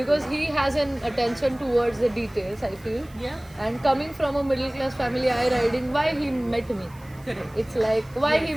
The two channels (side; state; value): right; noise; hiss, 27 dB below the sound